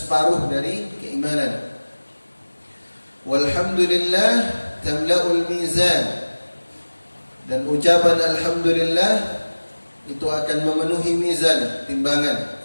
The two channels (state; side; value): inverted; both; correlation -1.00